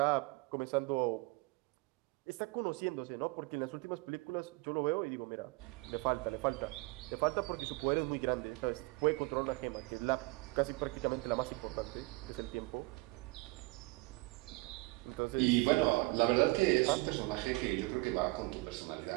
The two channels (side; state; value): left; quieter; 24.3 dB